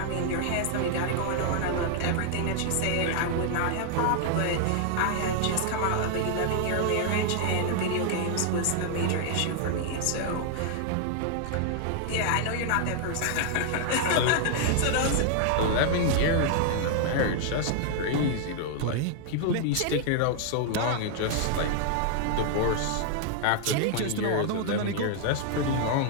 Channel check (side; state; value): both; different; correlation 0.00